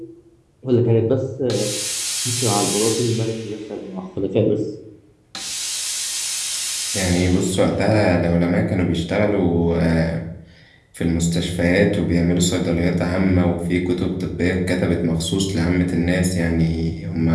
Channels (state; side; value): identical; both; correlation 1.00